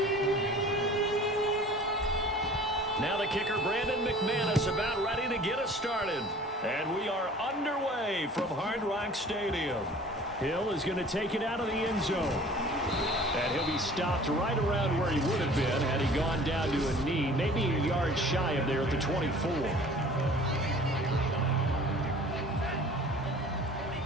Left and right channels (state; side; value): normal; both; correlation 0.47